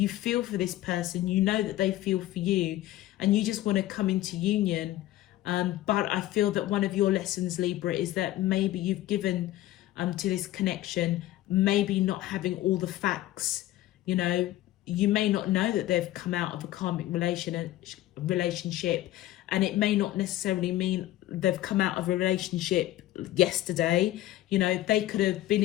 feel for this person, you know that they feel for you, and you just want to come into union. But I feel that one of your lessons, Libra, is that maybe you've given to this connection, maybe not having all the facts. You know, you may not know that they've come out of a karmic relationship, and it may not necessarily mean they've come out of a relationship yesterday. You know, they could have been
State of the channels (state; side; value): quieter; right; 15.0 dB